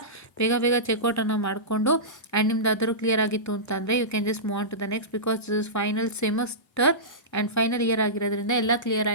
ಬೇಗ ಬೇಗ ಚೆಕ್ಔಟನ್ನು ಮಾಡಿಕೊಂಡು and ನಿಮ್ದು ಅದರೂ clear ಆಗಿತ್ತು ಅಂತಂದರೆ you can just move on to the next, because this is final semester and final year ಆಗಿರೋದ್ರಿಂದ ಎಲ್ಲ ಕ್ಲಿಯರ್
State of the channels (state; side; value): normal; both; correlation -0.18